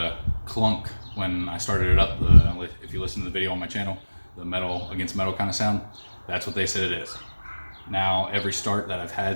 clunk when I started it up. If you listen to the video on my channel, the metal against metal kind of sound, that's what they said it is. Now, every start that I've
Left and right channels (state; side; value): inverted; both; correlation -1.00